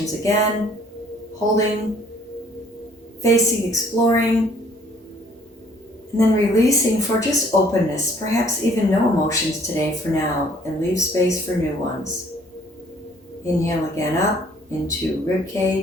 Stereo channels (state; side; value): normal; both; correlation 0.59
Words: again, holding, facing, exploring, and then releasing for just openness, perhaps even no emotions today for now, and leave space for new ones. Inhale again up into rib